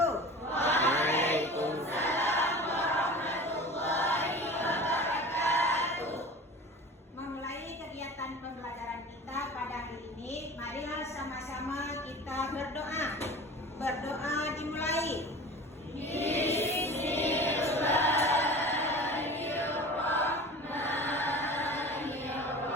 Waalaikumsalam warahmatullahi wabarakatuh. Memulai kegiatan pembelajaran kita pada hari ini, marilah sama-sama kita berdoa. Berdoa dimulai.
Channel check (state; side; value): normal; both; correlation 0.37